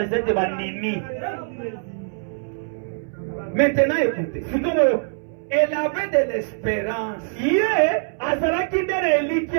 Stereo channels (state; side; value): silent; left; 63 dB below the other